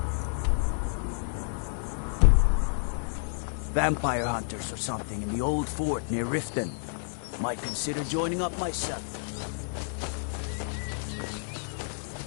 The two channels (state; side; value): silent; right; digital silence